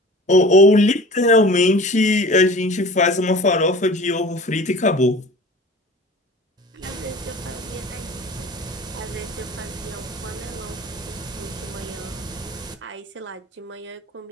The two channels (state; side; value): normal; both; correlation 0.41